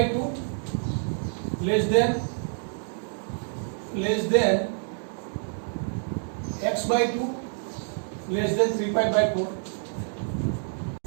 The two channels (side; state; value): left; silent; digital silence